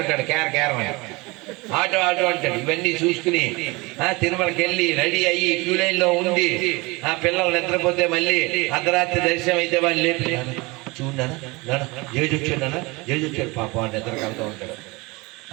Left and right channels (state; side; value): quieter; left; 24.8 dB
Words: క్యార్ ఆటో అంటాడు. ఇవన్నీ చూసుకుని తిరుమలకి వెళ్ళి రెడీ అయ్యి క్యూ లైన్ లో ఉండి ఆ పిల్లలు నిద్రపోతే మళ్ళీ అర్ధరాత్రి దర్శనం అయితే వాళ్ళు లేపి చూడనా జేజు వచ్చాడు పాపం అని నిద్ర కలుగుతూ ఉంటాడు.